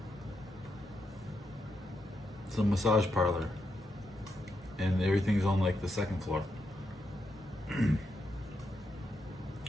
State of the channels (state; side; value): normal; both; correlation 0.82